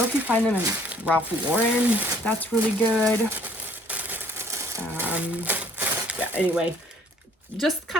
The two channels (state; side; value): normal; both; correlation 0.59